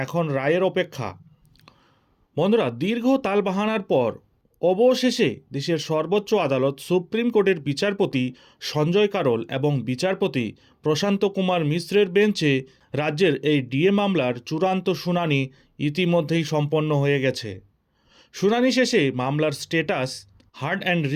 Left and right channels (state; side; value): identical; both; correlation 1.00